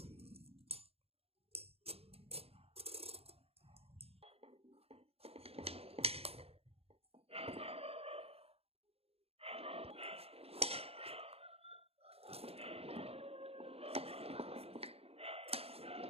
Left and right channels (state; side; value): late; left; 0.29 ms